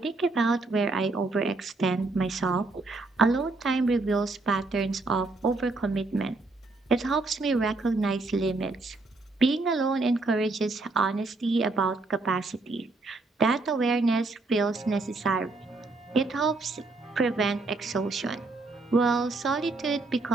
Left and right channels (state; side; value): quieter; left; 3.4 dB